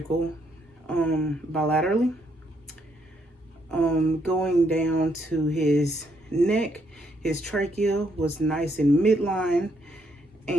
bilaterally. Going down to his neck, his trachea was nice and midline,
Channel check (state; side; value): normal; both; correlation 0.74